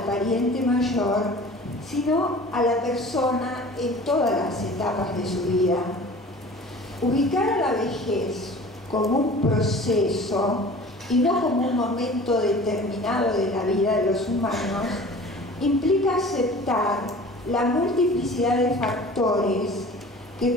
pariente mayor, sino a la persona en todas las etapas de su vida. Ubicar a la vejez como un proceso y no como un momento determinado de la vida de los humanos implica aceptar la multiplicidad de factores que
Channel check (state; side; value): normal; both; correlation 0.43